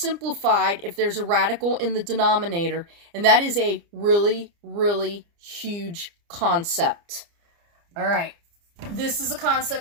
if there's a radical in the denominator. And that is a really, really huge concept. All right, this is a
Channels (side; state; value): left; late; 29 ms